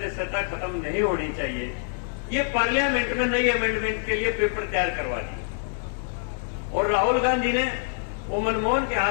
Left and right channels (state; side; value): silent; right; digital silence